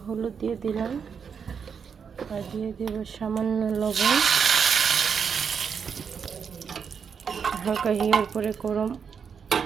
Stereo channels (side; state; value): left; quieter; 6.6 dB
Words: হলুদ দিয়ে দিলাম আর দিয়ে দেব সামান্য লবণ। হালকা হিয়ার পরে